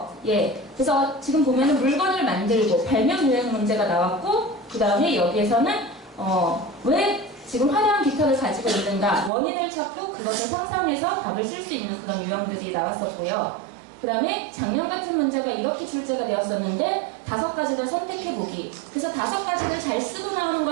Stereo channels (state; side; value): drops out; left; at 9.3 s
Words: 예, 그래서 지금 보면은 물건을 만들고 발명 유형 문제가 나왔고 그 다음에 여기에서는 왜 지금 화려한 깃털을 가지고 있는가 원인을 찾고 그것을 상상해서 답을 쓸 수 있는 그런 유형들이 나왔었고요. 그 다음에 작년 같은 문제가 이렇게 출제가 되었었는데 5가지를 선택해보기. 그래서 5가지를 잘 쓰고 나오는